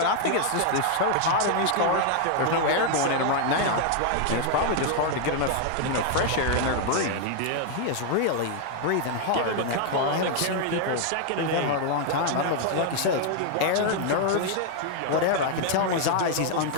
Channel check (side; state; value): both; different; correlation 0.00